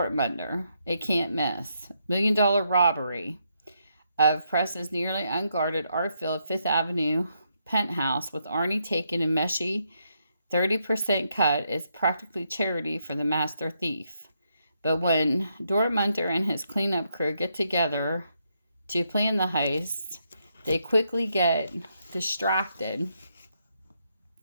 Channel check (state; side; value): inverted; both; correlation -0.78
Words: A can't miss. $1 million robbery of Preston's nearly unguarded, art-filled Fifth Avenue penthouse, with Arnie taking a meshy 30% cut, is practically charity for the master thief. But when Dortmunder and his cleanup crew get together to plan the heist, they quickly get distracted.